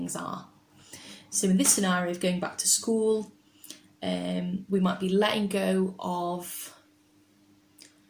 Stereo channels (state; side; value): identical; both; correlation 1.00